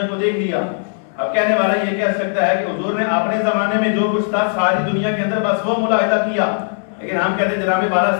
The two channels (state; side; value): silent; right; 67 dB below the other